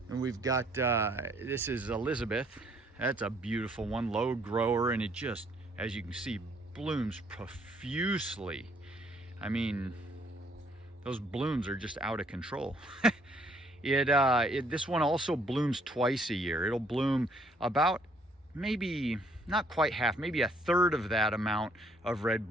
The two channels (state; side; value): normal; both; correlation 0.65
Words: And we've got this is Elizabeth. That's a beautiful one, low grower, and it just, as you can see, blooms profusely. I mean, those blooms are just out of control. This one also blooms twice a year. It'll bloom about maybe not quite half, maybe a third of that amount of red